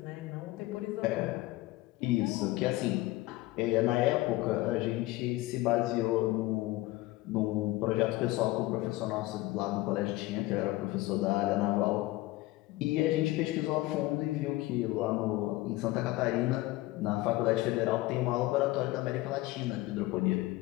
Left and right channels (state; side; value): quieter; right; 18.5 dB